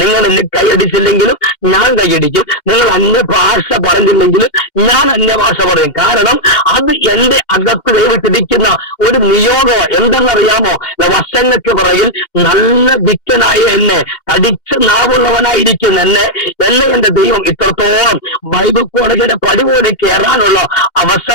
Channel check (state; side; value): late; right; 2.1 ms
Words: എന്നെ കൈയടിച്ചില്ലെങ്കിലും ഞാൻ കൈയടിക്കും. നിങ്ങൾ അന്യഭാഷ പറഞ്ഞില്ലെങ്കിലും ഞാൻ അന്യഭാഷ പറയും. കാരണം അത് എന്റെ അകത്ത് ദൈവത്തിരിക്കുന്ന ഒരു നിയോഗം. എന്തെന്നറിയാമോ? വർഷങ്ങൾക്ക് പുറകിൽ നല്ല വിക്കനായ എന്നെ, തടിച്ച നാവുള്ളവനായിരിക്കുന്ന എന്നെ എന്റെ ദൈവം ഇത്രത്തോളം ബൈബിൾ കോളേജിന്റെ പടി പോലെ കയറാനുള്ള